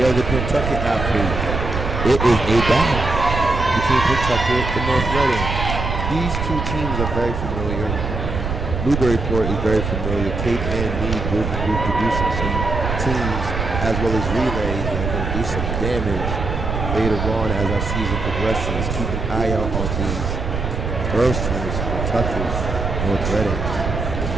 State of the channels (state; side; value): noise; right; rumble, 3 dB below the sound